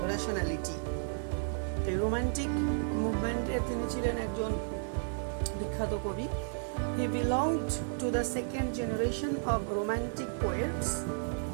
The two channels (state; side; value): silent; left; digital silence